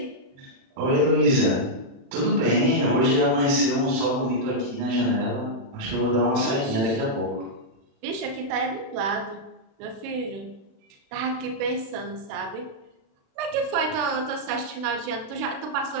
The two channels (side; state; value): left; late; 36 ms